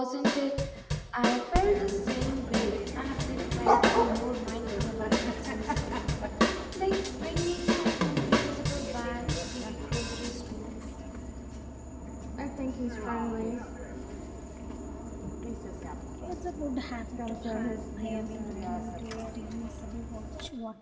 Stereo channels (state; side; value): identical; both; correlation 1.00